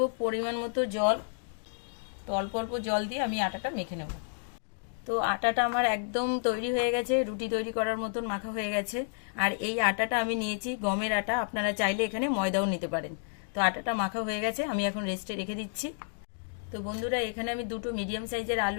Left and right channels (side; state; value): right; silent; digital silence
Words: পরিমাণ মতো জল। তো অল্প অল্প জল দিয়ে আমি আটাটা মেখে নেব। তো আটাটা আমার একদম তৈরি হয়ে গেছে, রুটি তৈরি করার মতন মাখা হয়ে গেছে। আর এই আটাটা আমি নিয়েছি গমের আটা, আপনারা চাইলে এখানে ময়দাও নিতে পারেন। তো আটাটা মাখা হয়ে গেছে, আমি এখন রেস্টে রেখে দিচ্ছি। তো বন্ধুরা, এখানে আমি দুটো মিডিয়াম সাইজের